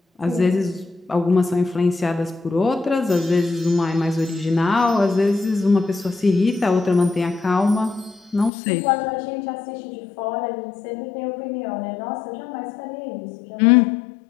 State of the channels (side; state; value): right; drops out; at 8.5 s